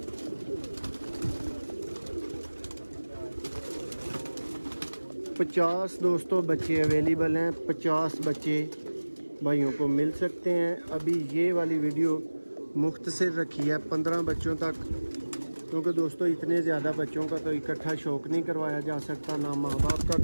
पचास दोस्तों बच्चे अवेलेबल हैं। 50 बच्चे भाइयों को मिल सकते हैं। अभी ये वाली वीडियो मुख्तसर रखी है 15 बच्चों तक, क्योंकि दोस्तों इतने ज़्यादा बच्चों का तो इकट्ठा शौक नहीं करवाया जा सकता, ना माँ बाप का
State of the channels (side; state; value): both; inverted; correlation -1.00